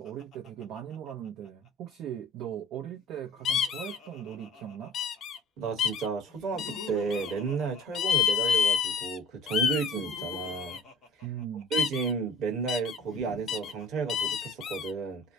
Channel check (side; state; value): both; normal; correlation 0.44